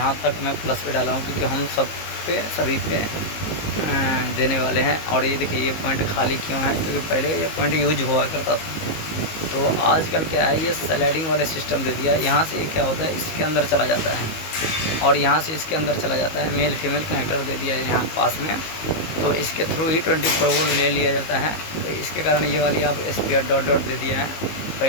तक मैं प्लस पे डाला हूँ क्योंकि हम सभी पे देने वाले हैं। और ये देखिए ये पॉइंट खाली क्यों है, क्योंकि पहले ये पॉइंट यूज हुआ करता था। तो आजकल क्या है, ये स्लाइडिंग वाले सिस्टम दे दिया है। यहाँ से क्या होता है, इसके अंदर चला जाता है और यहाँ से इसके अंदर चला जाता है। मेल फीमेल कनेक्टर दे दिया है यहाँ पास में, तो इसके थ्रू ही 24 वोल्ट ले लिया जाता है। तो इसके कारण ये वाली आप स्पेयर डॉट डॉट दे दिया है।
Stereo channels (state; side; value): late; right; 19 ms